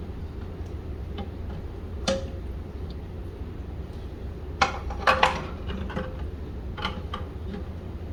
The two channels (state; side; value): identical; both; correlation 1.00